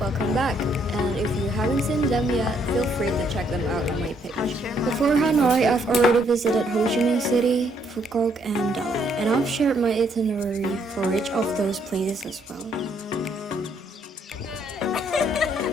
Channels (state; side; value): normal; both; correlation 0.70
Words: welcome back. And if you haven't seen them yet, feel free to check them out on my page. Before Hanoi, I've already visited Ho Chi Minh City, Phu Quoc, and Dalat. And I've shared my itinerary for each of those places as well.